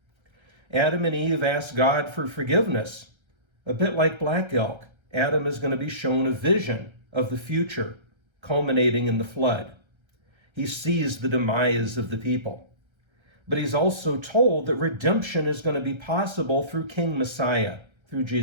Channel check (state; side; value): late; left; 1.3 ms